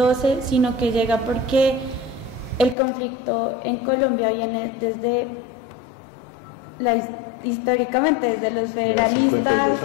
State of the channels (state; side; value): drops out; right; at 2.8 s